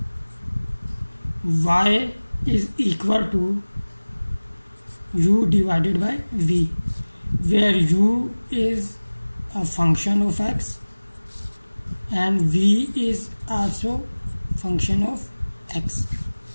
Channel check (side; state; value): both; inverted; correlation -1.00